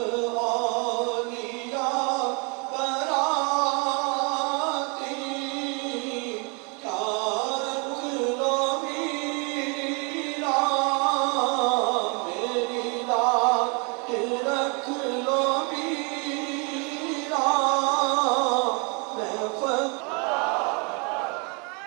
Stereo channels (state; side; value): quieter; left; 33.5 dB